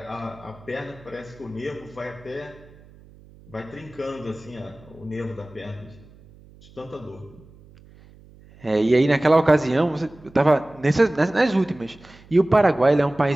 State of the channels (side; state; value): right; noise; hum, 24 dB below the sound